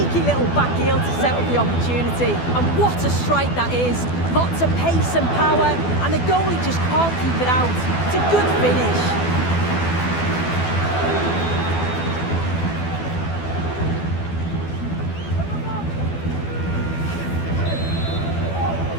little back heel to set up the opportunity. And what a strike that is. Lots of pace and power, and the goalie just can't keep it out. It's a good finish.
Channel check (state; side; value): late; right; 12 ms